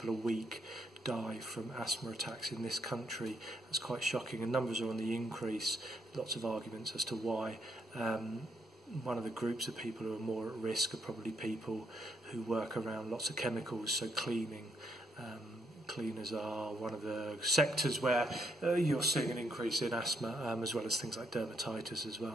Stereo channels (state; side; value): normal; both; correlation 0.75